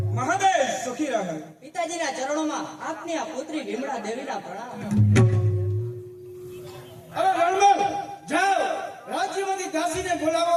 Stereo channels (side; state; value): both; identical; correlation 1.00